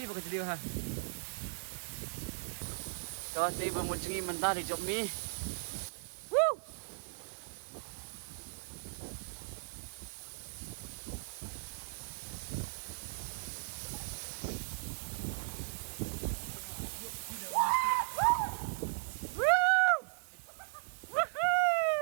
bukan liêu ha. Cho tôi vừa một chừng mình ta để chụp mi.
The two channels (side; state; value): left; silent; 53 dB below the other